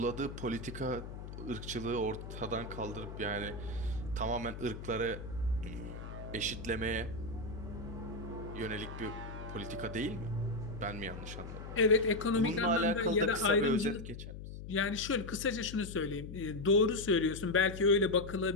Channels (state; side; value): noise; left; hum, 10 dB below the sound